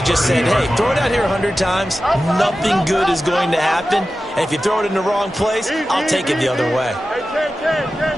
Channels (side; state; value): both; normal; correlation 0.94